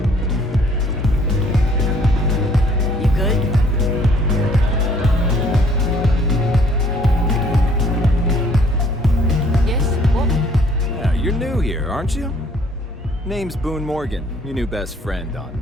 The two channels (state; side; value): normal; both; correlation 0.60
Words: You good? Yes? What? Yeah, you're new here, aren't you? Name's Boone Morgan, your new best friend on